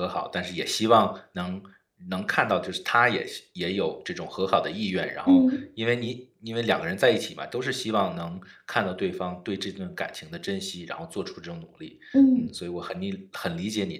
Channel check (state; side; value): identical; both; correlation 1.00